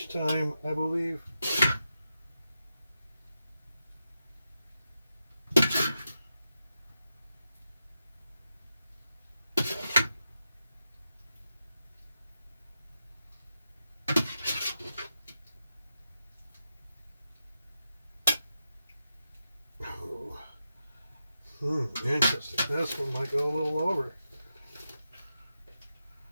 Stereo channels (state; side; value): inverted; both; correlation -0.88